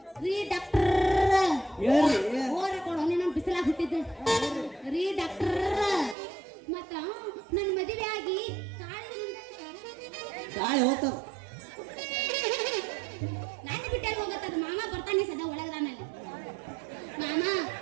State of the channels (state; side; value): drops out; left; at 6.2 s